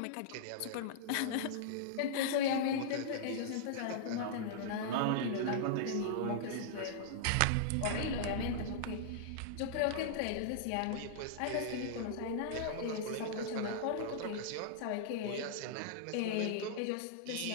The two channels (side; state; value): both; different; correlation -0.02